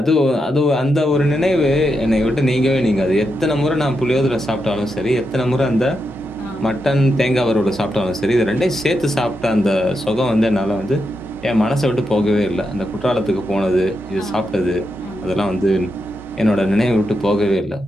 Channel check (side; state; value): both; normal; correlation 0.85